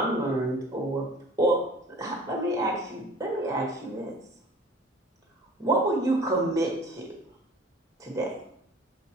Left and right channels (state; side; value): normal; both; correlation 0.46